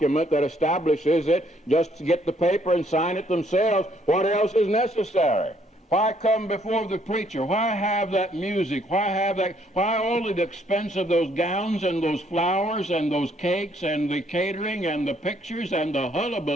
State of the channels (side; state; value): both; normal; correlation 0.67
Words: that establishes it, just to get the paper and sign it themselves, what else is necessary? Why come before the preacher? Why have that music? Why all the expense of those gowns and those flowers and those cakes and the catering and the pictures and the